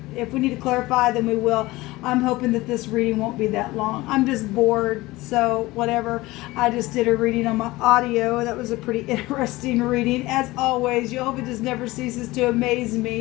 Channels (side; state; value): right; quieter; 19.7 dB